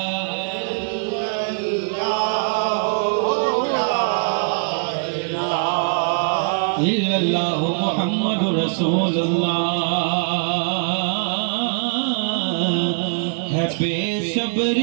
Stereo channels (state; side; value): silent; left; 65 dB below the other